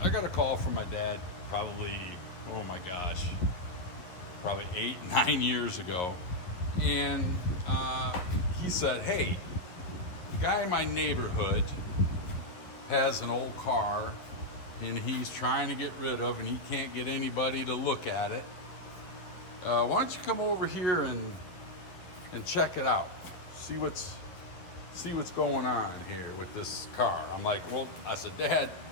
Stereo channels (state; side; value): late; right; 11 ms